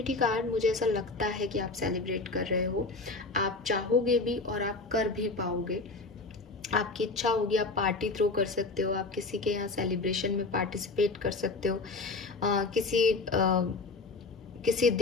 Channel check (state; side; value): quieter; right; 3.5 dB